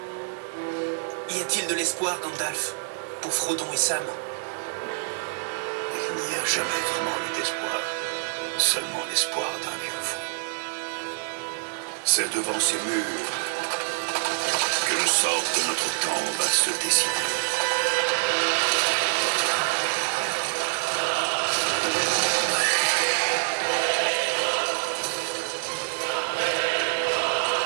Y a-t-il de l'espoir, Gandalf, pour Frodon et Sam? Il n'y a jamais vraiment eu d'espoir, seulement l'espoir d'un vieux fou. C'est devant ces murs que le sort de notre temps va se décider.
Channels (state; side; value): silent; left; 61 dB below the other